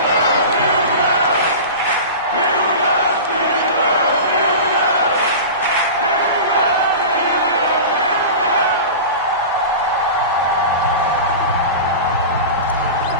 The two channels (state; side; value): inverted; both; correlation -0.31